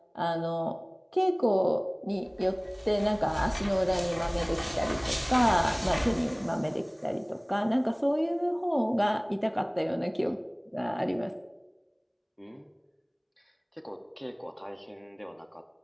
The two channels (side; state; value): both; identical; correlation 1.00